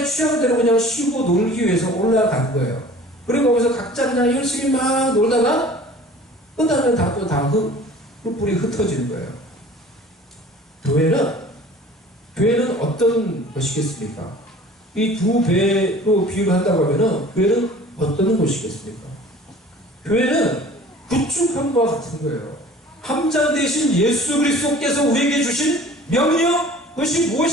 취향대로 그냥 쉬고 놀기 위해서 올라간 거예요. 그리고 거기서 각자 그냥 열심히 막 놀다가 끝나면 뿔뿔이 흩어지는 거예요. 교회는 어떤 것이겠습니까? 이 두 배로 비유를 한다고 하면은 교회는 어떤 곳이겠습니까? 교회는 구축함과 같은 거예요. 함장 대신 예수 그리스도께서 우리에게 주신 명령, 그것이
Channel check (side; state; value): both; normal; correlation 0.46